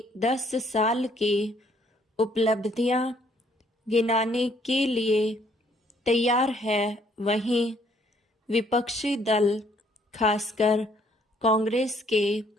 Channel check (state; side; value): normal; both; correlation 0.66